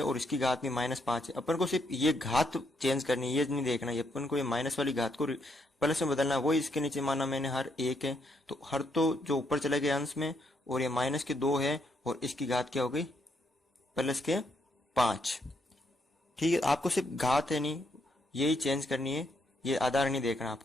और इसकी घात भी -5 है। अपन को सिर्फ ये घात चेंज करनी है, ये नहीं देखना है, अपन को ये माइनस वाली घात को प्लस में बदलना है। वही इसके नीचे माना मैंने हर 1 है, तो हर तो जो ऊपर चले गए अंश में, और ये माइनस के 2 है और इसकी घात क्या हो गई, प्लस के 5। ठीक है, आपको सिर्फ घात है नहीं यही चेंज करनी है, ये आधार नहीं देखना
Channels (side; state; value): both; normal; correlation 0.76